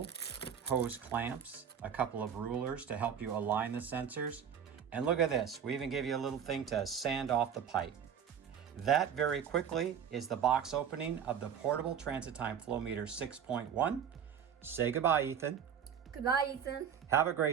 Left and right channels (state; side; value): quieter; left; 8.1 dB